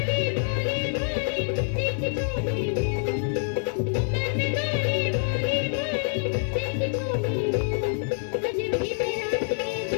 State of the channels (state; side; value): silent; right; digital silence